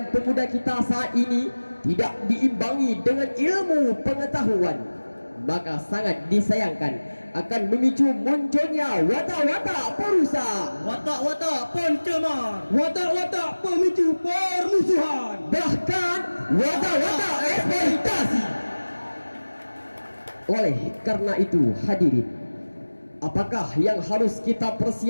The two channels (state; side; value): inverted; both; correlation -1.00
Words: pemuda kita saat ini tidak diimbangi dengan ilmu pengetahuan, maka sangat disayangkan akan memicu munculnya watak-watak perusak, Watak-watak pencemar, Watak-watak pemicu permusuhan, bahkan watak-watak eksploitasi. Oleh karena itu hadirin, apakah yang harus kita